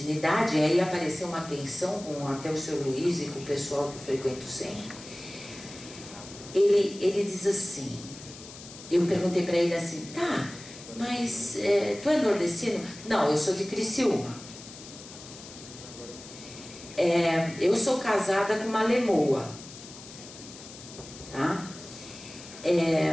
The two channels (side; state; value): left; noise; hiss, 16 dB below the sound